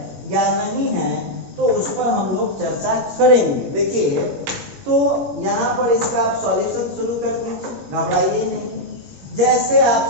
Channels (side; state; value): left; late; 21 ms